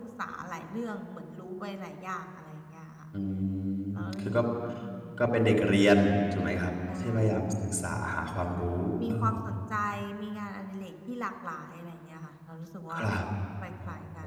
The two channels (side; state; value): both; identical; correlation 1.00